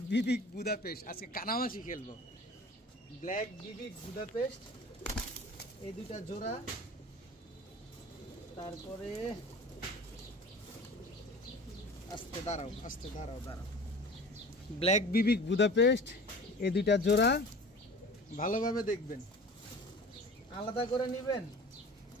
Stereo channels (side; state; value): both; normal; correlation 0.40